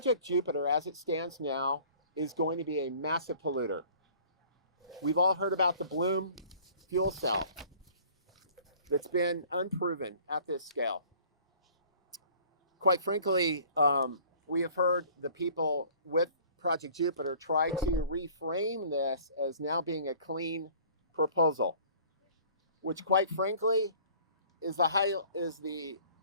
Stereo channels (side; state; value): both; inverted; correlation -0.51